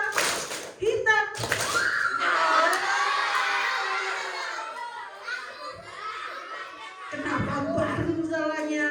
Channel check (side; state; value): both; identical; correlation 1.00